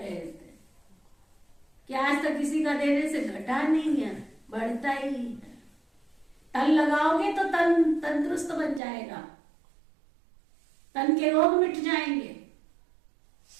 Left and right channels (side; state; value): left; drops out; at 8.8 s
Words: थे कि आज तक किसी का देने से घटा नहीं है, बढ़ता ही है। तन लगाओगे तो तन तंदुरुस्त बन जाएगा, तन के रोग मिट जाएंगे।